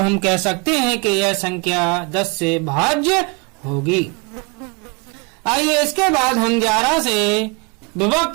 कह सकते हैं कि यह संख्या 10 से भाज्य होगी। आइए इसके बाद हम 11 से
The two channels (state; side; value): quieter; left; 29.6 dB